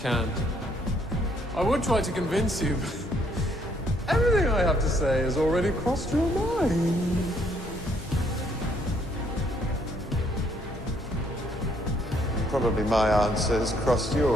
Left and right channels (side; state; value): both; normal; correlation 0.68